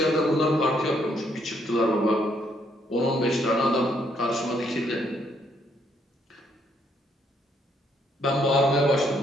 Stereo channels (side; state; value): both; normal; correlation 0.71